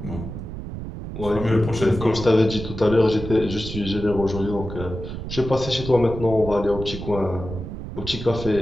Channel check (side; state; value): right; noise; rumble, 8 dB below the sound